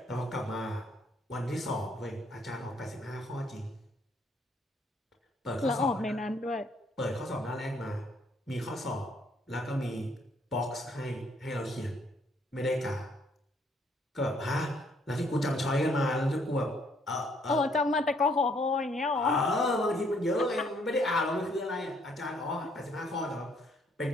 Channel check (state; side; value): normal; both; correlation 0.67